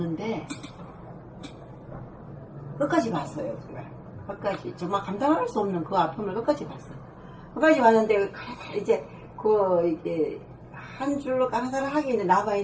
끝까지 봤어요. 끝까지 정말 감당할 수 없는 그 아픔을 끝까지 봤어요. 끝까지 봤는데 이제 이게 한 줄로 강사를 하기에는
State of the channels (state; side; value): identical; both; correlation 1.00